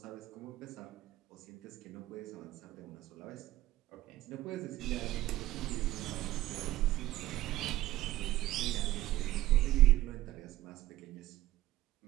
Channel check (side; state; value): left; quieter; 15.9 dB